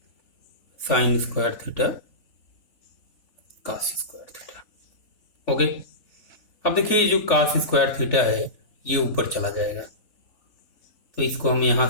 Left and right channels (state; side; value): late; right; 3.4 ms